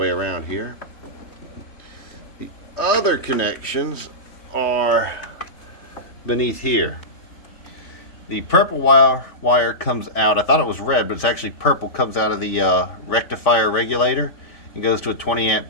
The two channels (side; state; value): right; late; 3.3 ms